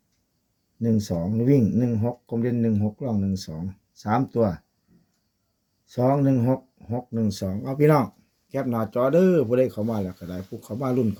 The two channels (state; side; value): identical; both; correlation 1.00